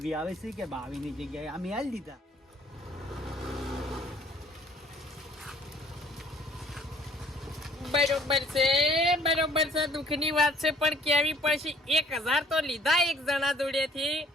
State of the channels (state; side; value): normal; both; correlation 0.57